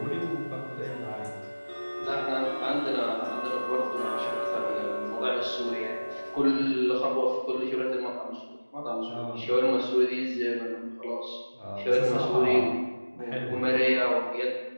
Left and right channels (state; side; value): inverted; both; correlation -1.00